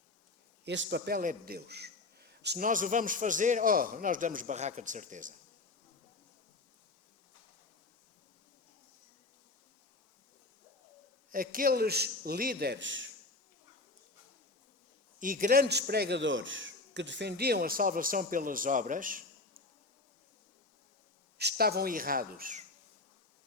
Esse papel é de Deus. Se nós o vamos fazer, nós damos barraca de certeza. Aqueles líderes e grandes pregadores que defendiam a salvação pelas obras estavam errados,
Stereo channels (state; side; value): quieter; right; 3.3 dB